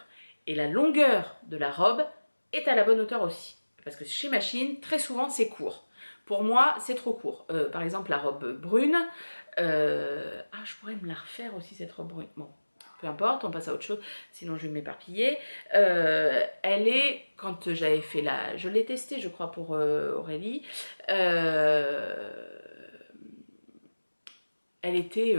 et la longueur de la robe est à la bonne hauteur aussi. Parce que chez Machine, très souvent, c'est court. Pour moi, c'est trop court. Par exemple, la robe brune. Je pourrais me la refaire aussi, cette robe brune. Bon, peu importe, on passe à autre chose, sinon je vais m'éparpiller. Elle est, quand j'avais fait la... Je l'ai testée, je crois, pour Aurélie. Elle était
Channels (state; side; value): inverted; both; correlation -1.00